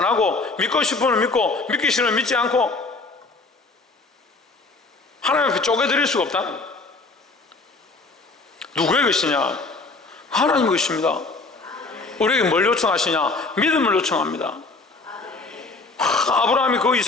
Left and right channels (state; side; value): quieter; right; 3.7 dB